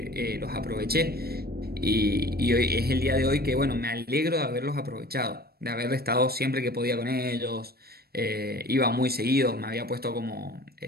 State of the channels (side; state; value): left; late; 0.45 ms